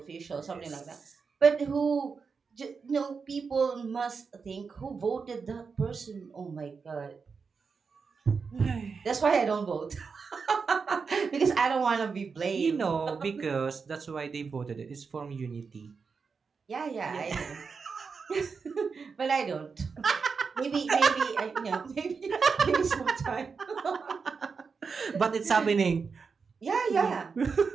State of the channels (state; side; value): quieter; left; 5.3 dB